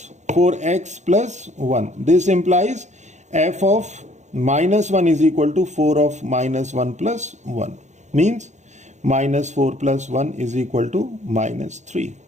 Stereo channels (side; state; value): left; late; 0.34 ms